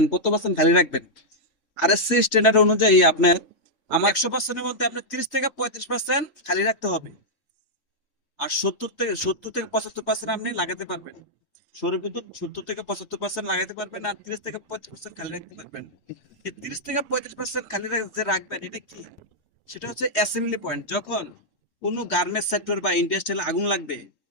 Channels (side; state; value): right; late; 3.1 ms